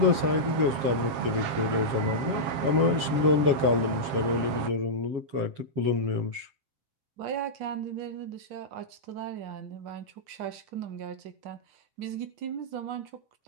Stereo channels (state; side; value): late; left; 7.4 ms